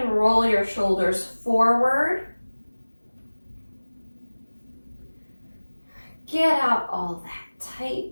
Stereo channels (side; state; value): both; inverted; correlation -1.00